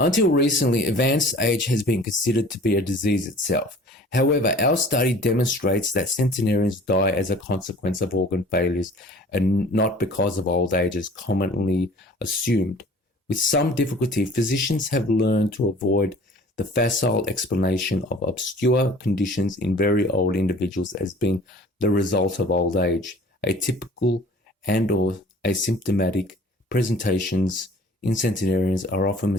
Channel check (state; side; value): normal; both; correlation 0.48